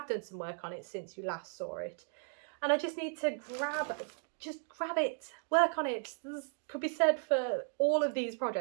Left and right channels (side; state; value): left; silent; 54 dB below the other